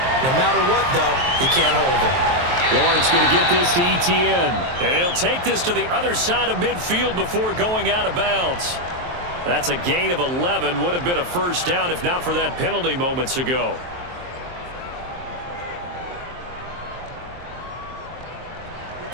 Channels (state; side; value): late; left; 23 ms